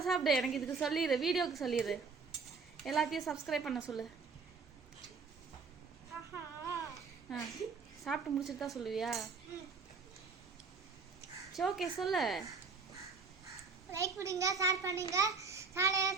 சாப்பிடு. எனக்கு இதுக்கு சொல்லிடு, வீடியோக்கு சொல்லிடு. எல்லாத்தையும் சப்ஸ்கிரைப் பண்ண சொல்லு. சாப்பிட்டு முடிச்சுட்டு தான் சொல்லுவியா? சரி ஓகே சொல்லு. லைக் பண்ணுங்க, ஷேர் பண்ணுங்க, சேனலை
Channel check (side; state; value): left; quieter; 4.7 dB